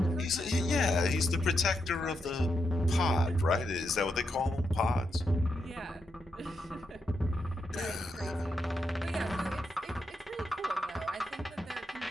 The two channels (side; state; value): both; normal; correlation 0.83